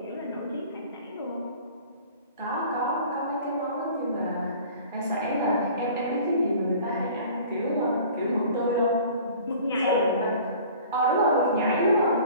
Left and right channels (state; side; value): inverted; both; correlation -0.46